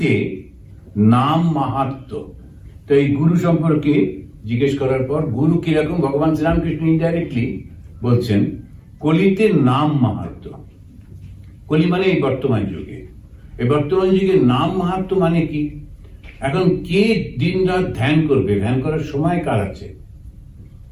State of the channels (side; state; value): both; identical; correlation 1.00